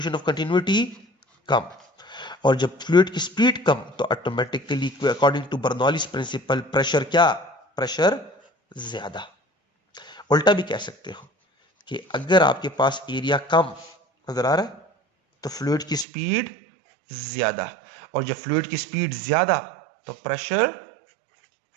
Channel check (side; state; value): left; drops out; at 16.1 s